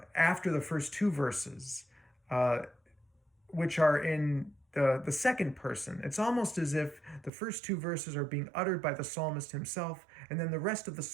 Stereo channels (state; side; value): drops out; left; at 7.3 s